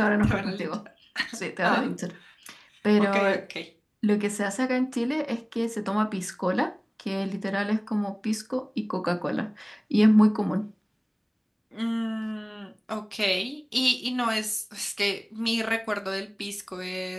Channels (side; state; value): both; identical; correlation 1.00